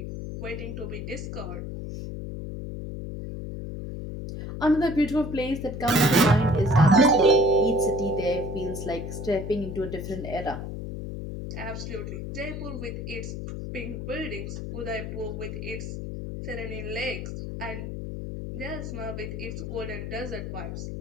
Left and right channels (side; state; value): left; noise; hum, 6 dB below the sound